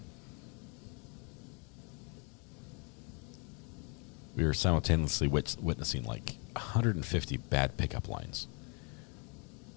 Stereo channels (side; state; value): right; quieter; 34.3 dB